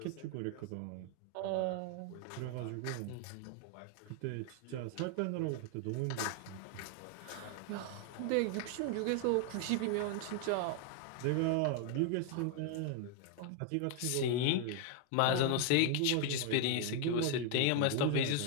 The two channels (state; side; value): different; both; correlation 0.00